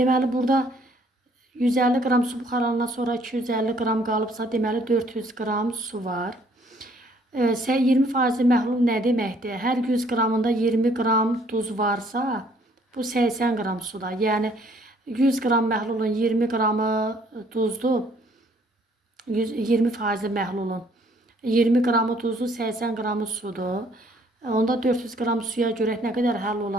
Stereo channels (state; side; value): normal; both; correlation 0.62